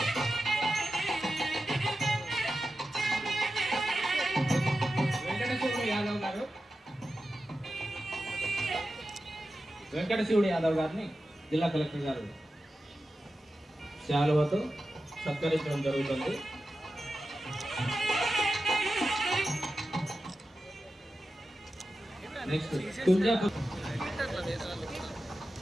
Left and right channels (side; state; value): both; normal; correlation 0.92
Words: వెంకటశివుడు యాదవ్ గారిని జిల్లా కలెక్టర్ గారు శాలువతో సత్కరించడం జరుగుతుంది. నెక్స్ట్ తుంజాపూర్